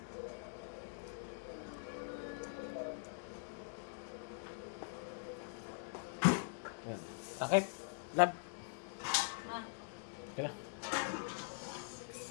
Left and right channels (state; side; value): silent; right; digital silence